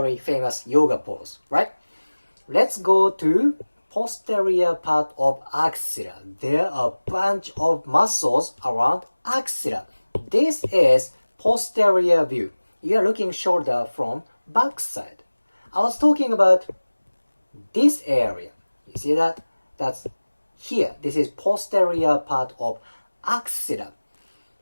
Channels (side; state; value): both; inverted; correlation -1.00